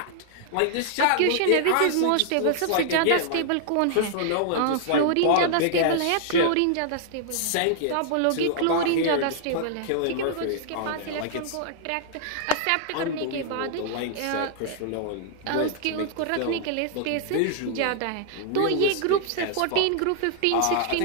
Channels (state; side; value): different; both; correlation -0.01